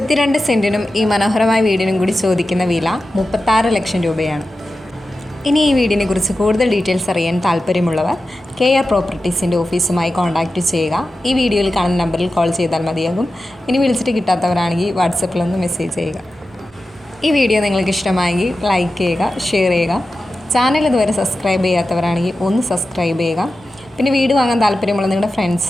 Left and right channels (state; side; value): normal; both; correlation 0.93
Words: സെൻറ്റിനും ഈ മനോഹരമായ വീടിനും കൂടി ചോദിക്കുന്ന വില 36 ലക്ഷം രൂപയാണ്. ഇനി ഈ വീടിനെ കുറിച്ച് കൂടുതൽ ഡീറ്റെയിൽസ് അറിയാൻ താല്പര്യമുള്ളവർ കെയർ പ്രോപ്പർട്ടീസിൻ്റെ ഓഫീസുമായി കോൺടാക്റ്റ് ചെയ്യുക. ഈ വീഡിയോയിൽ കാണുന്ന നമ്പറിൽ കോൾ ചെയ്താൽ മതിയാകും. ഇനി വിളിച്ചിട്ട് കിട്ടാത്തവരാണെങ്കിൽ വാട്സപ്പിലൊന്ന് മെസ്സേജ് ചെയ്യുക. ഈ വീഡിയോ നിങ്ങൾക്ക് ഇഷ്ടമായെങ്കിൽ ലൈക്ക് ചെയ്യുക, ഷെയർ ചെയ്യുക. ചാനൽ ഇതുവരെ സബ്സ്ക്രൈബ് ചെയ്യാത്തവരാണെങ്കിൽ ഒന്ന് സബ്സ്ക്രൈബ് ചെയ്യുക. പിന്നെ വീട് വാങ്ങാൻ താല്പര്യമുള്ള നിങ്ങളുടെ